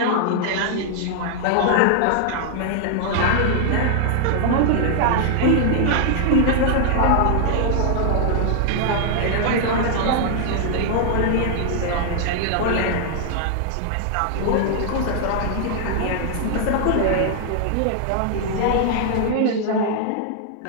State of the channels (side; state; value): both; different; correlation 0.00